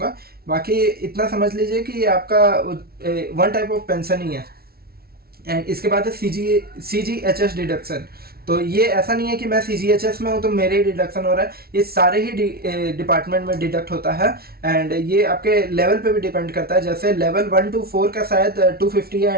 बाकी इतना समझ लीजिए कि ये आपका वन टाइप ऑफ पेंशन ही है। एंड इसके बाद है CGHS डिडक्शन। तो ये ऐसा नहीं है कि मैं CGHS में हूँ तो मेरे ही डिडक्शन हो रहा है, ये सारे ही डिपार्टमेंट में डिडक्ट होता है। एंड ये आपके लेवल पे भी डिपेंड करता है, जैसे लेवल 1 to 4 का शायद 250 है,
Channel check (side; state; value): left; late; 0.44 ms